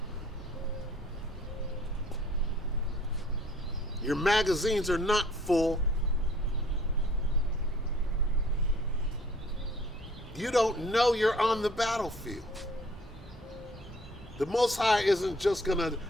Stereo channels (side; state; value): both; normal; correlation 0.56